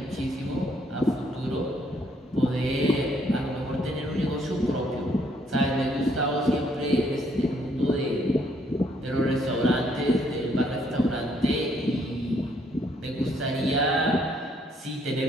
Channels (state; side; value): normal; both; correlation 0.69